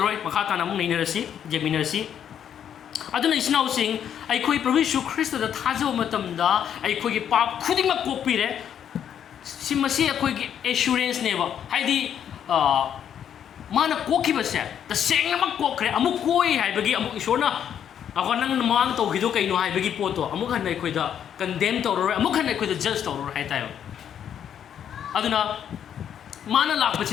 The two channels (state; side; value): quieter; right; 9.1 dB